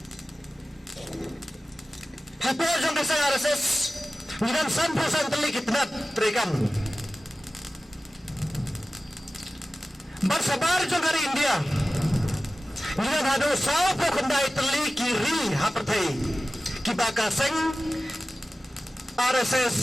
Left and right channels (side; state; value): both; normal; correlation 0.95